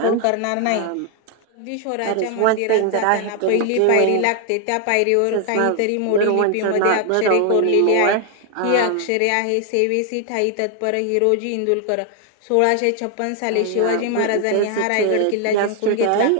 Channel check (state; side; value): different; both; correlation 0.00